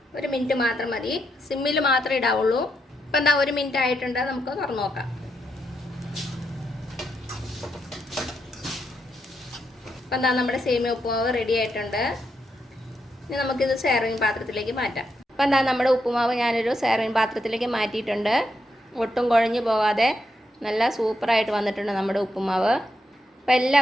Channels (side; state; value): both; normal; correlation 0.81